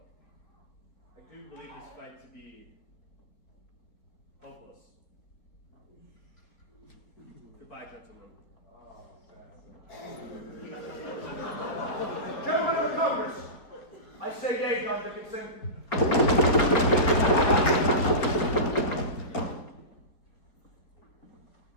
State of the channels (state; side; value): late; right; 4.3 ms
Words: I do believe this fight to be hopeless. Goodbye, gentlemen. Gentlemen of the Congress, I say yea, John Dickinson.